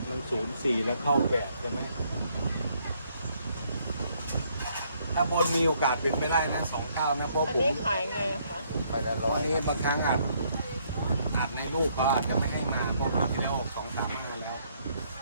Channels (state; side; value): inverted; both; correlation -0.69